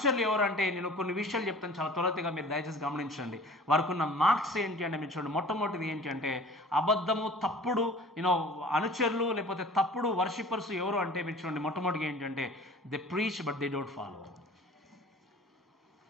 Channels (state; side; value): normal; both; correlation 0.45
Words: ఎవరు అంటే, నేను కొన్ని విషయాలు చెప్తాను చాలా త్వరగా, మీరు దయచేసి గమనించండి. వారికి ఉన్న మార్క్స్ ఏంటి అంటే మీరు చూడండి. మొట్టమొదటిది ఏంటి అంటే, అబద్ధము, తప్పుడు అనుచరులు లేకపోతే తప్పుడు వర్షిపర్స్ ఎవరు అంటే మీరు చూడండి. మొట్టమొదటిగా ఏంటంటే, they preach but they don't follow.